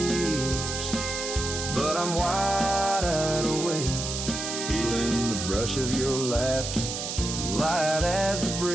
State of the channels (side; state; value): right; noise; hiss, 4 dB below the sound